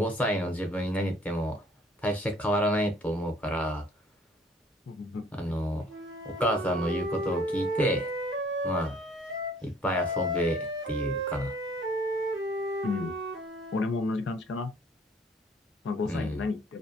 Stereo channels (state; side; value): normal; both; correlation 0.57